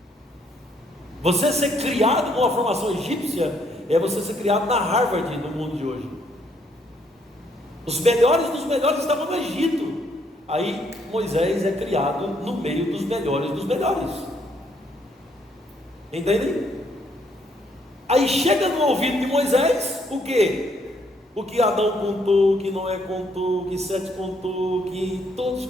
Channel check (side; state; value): both; normal; correlation 0.70